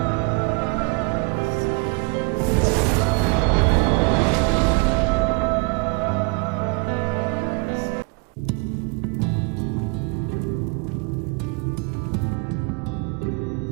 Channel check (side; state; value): left; quieter; 30.4 dB